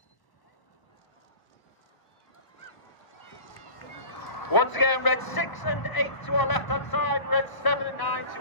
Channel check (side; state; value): right; late; 1.0 ms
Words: Once again, Red 6 and 8 to our left-hand side, Red 7 and 9